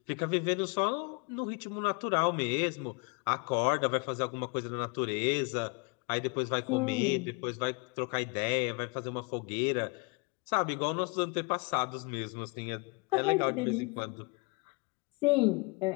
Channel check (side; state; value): right; quieter; 30.5 dB